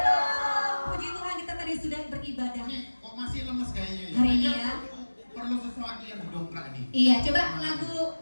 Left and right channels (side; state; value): both; inverted; correlation -1.00